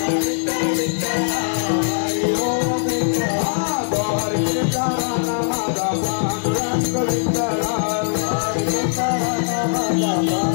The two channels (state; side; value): silent; right; digital silence